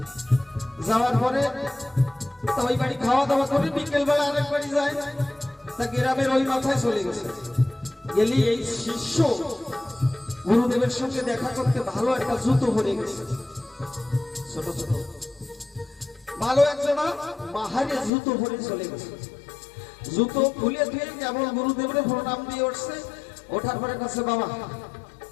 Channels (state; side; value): drops out; right; at 18.1 s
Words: যাওয়ার পরে ওই বাড়ি খাওয়া দাওয়া করে বিকেল বেলা আরেক বাড়ি যায়, তা গ্রামের ওই মাথায় চলে গেছে। গেলি এই শিষ্য গুরুদেবের সঙ্গে দেখা করতে ভালো একটা জুতো পরে গেছে, ছোট ছোট ভালো একজনা বাহারে জুতো পরে চলে গেছে। জুতো খুলে দিয়ে কেবল গুরুদেবের প্রণাম দিয়ে উঠছে, ওঠার পরে কাছে বাবা